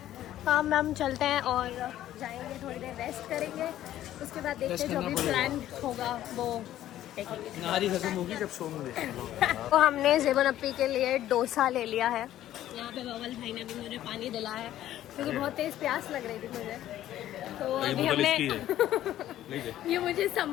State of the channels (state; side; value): quieter; right; 12.9 dB